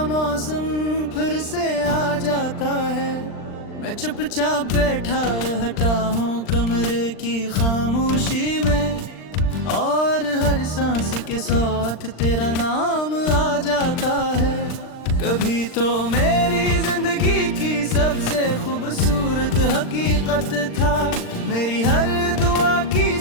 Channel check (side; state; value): right; late; 39 ms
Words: मौसम फिर से आ जाता है। मैं चुपचाप बैठा रहता हूँ कमरे की खामोशी में, और हर सांस के साथ तेरा नाम आ जाता है। कभी तो मेरी जिंदगी की सबसे खूबसूरत हकीकत था, मेरी हर दुआ की